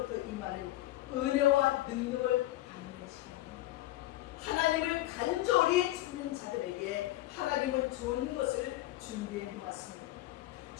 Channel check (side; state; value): right; quieter; 16.3 dB